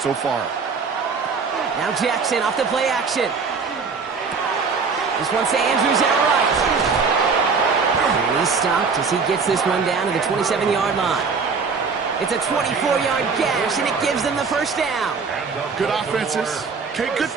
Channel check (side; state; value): left; quieter; 5.1 dB